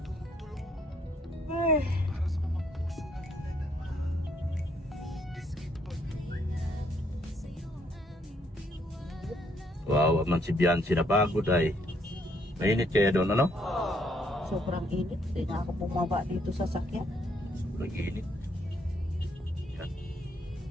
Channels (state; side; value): normal; both; correlation 0.69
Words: Wow, man si Biancy na pagod ay. Mainit kaya doon, ano? Sobrang init. Hindi na ako bumaba dito sa sakyan. Sobrang init. Yan.